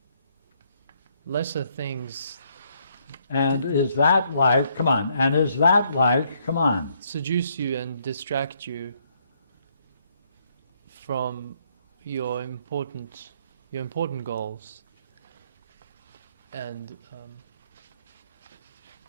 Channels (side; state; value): both; inverted; correlation -0.70